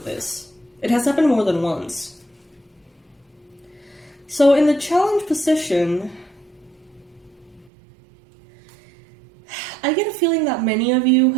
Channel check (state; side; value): drops out; left; at 7.7 s